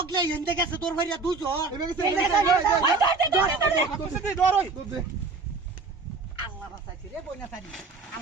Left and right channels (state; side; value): quieter; left; 4.1 dB